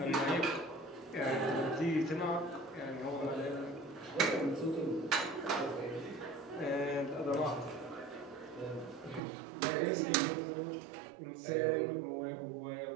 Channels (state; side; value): drops out; left; at 9.2 s